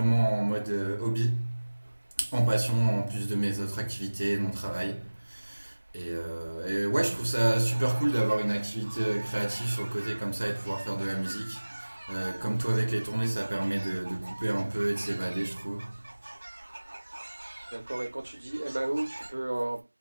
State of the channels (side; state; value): both; inverted; correlation -1.00